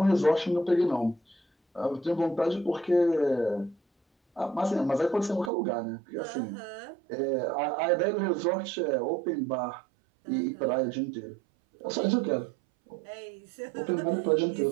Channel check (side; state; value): left; drops out; at 5.5 s